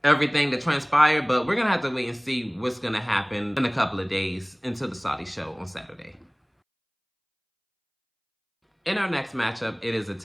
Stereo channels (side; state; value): both; identical; correlation 1.00